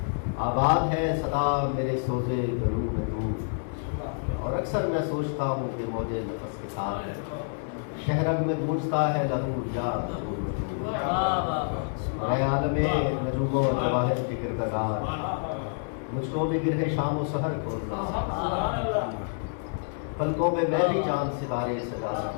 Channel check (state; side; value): silent; right; 59 dB below the other